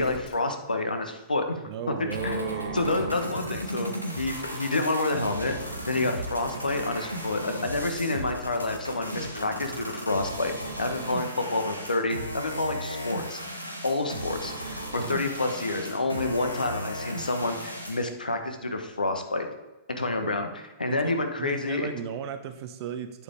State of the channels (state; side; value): inverted; both; correlation -0.62